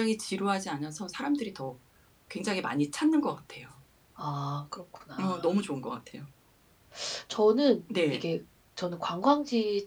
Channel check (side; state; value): both; identical; correlation 1.00